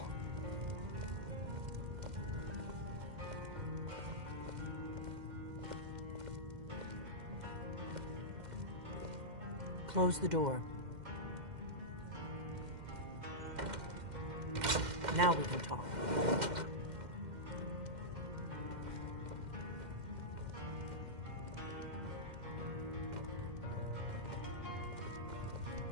Close the door. Now we can talk.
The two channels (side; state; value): left; late; 2.1 ms